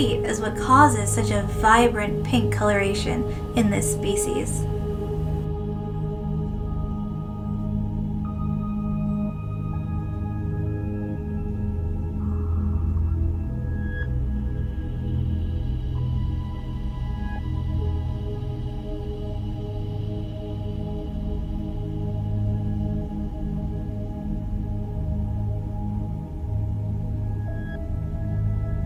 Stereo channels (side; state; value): both; identical; correlation 1.00